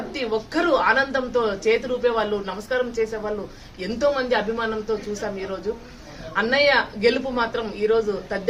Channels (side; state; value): both; identical; correlation 1.00